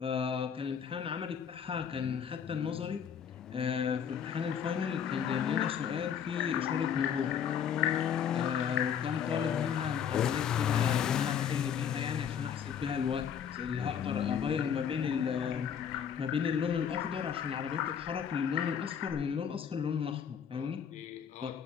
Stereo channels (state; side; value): quieter; right; 8.0 dB